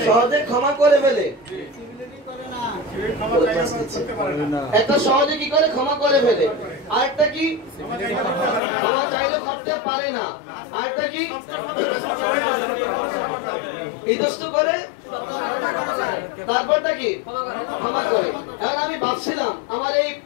সহজে ক্ষমা করে ফেলে। একটা সহজে কি করে ক্ষমা করে ফেলে, আরেকটা কি ক্ষমা চাইলেও করতে পারে না, আরেকটা কি ইতস্ত করে, তারপরটা কি ক্ষমা করে। এখন আমি ভাবছিলাম আমার এই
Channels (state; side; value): drops out; right; at 8.6 s